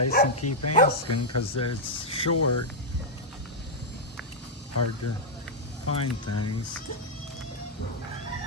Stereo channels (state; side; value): normal; both; correlation -0.05